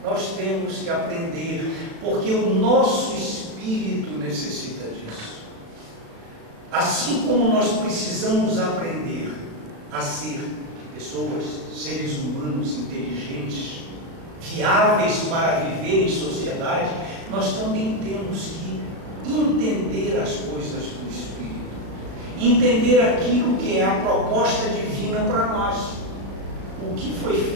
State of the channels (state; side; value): late; left; 36 ms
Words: nós temos que aprender, porque o nosso espírito necessita disso. Assim como nós precisamos aprender a ser pessoas, seres humanos inteligentes, viáveis para viver em sociedade, nós também temos que entender as coisas do Espírito, entender aquilo que é a proposta divina para nós, o que foi